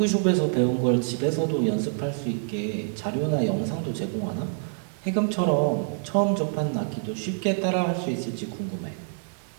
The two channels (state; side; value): silent; left; 61 dB below the other